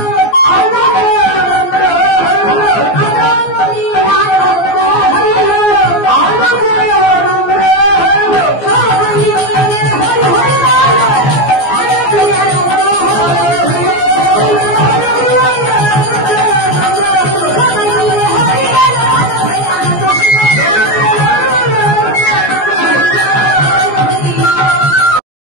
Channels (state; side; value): late; right; 14 ms